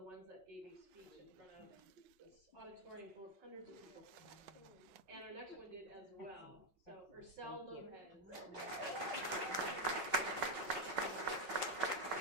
ones that gave a speech in front of this auditorium full of hundreds of people. And our next one did as well. So, Ursel Lopez.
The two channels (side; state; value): left; late; 5.4 ms